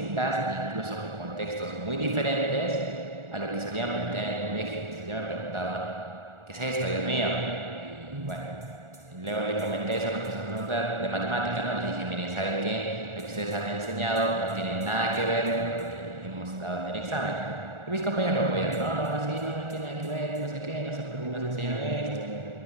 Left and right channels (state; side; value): late; left; 1.4 ms